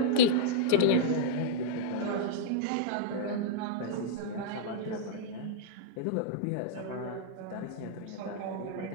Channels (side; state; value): both; different; correlation -0.02